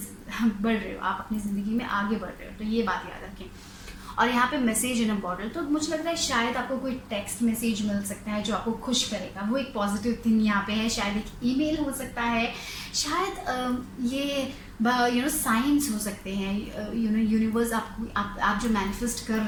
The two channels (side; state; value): both; identical; correlation 1.00